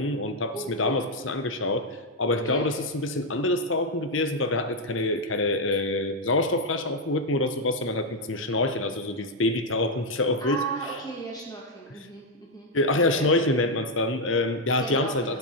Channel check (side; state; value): both; normal; correlation 0.01